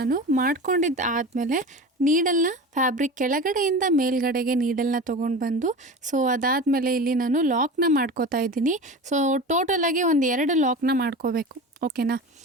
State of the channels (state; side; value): normal; both; correlation 0.31